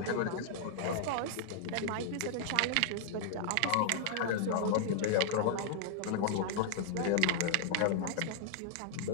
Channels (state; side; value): different; both; correlation -0.01